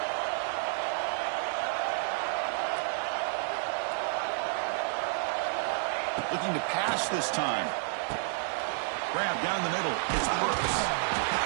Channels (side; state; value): left; silent; digital silence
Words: Looking to pass this time. Grab down the middle. It's Brooks.